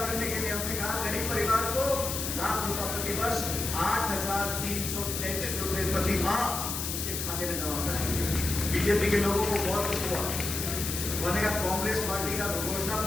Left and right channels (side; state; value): left; noise; hiss, 3 dB below the sound